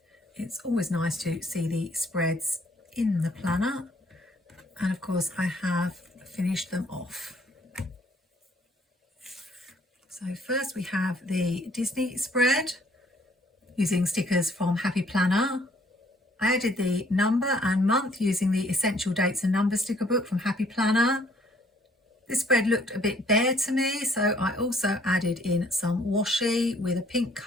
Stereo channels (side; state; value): both; normal; correlation 0.63